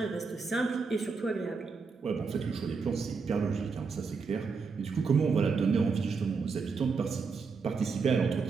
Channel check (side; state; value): left; quieter; 4.9 dB